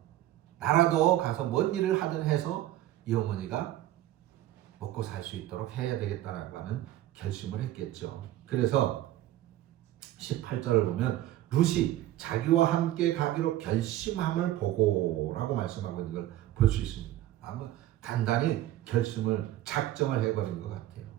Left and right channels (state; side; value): quieter; left; 14.1 dB